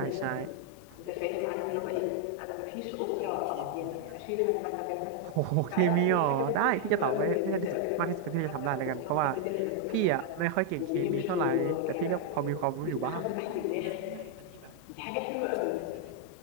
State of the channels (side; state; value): both; different; correlation 0.00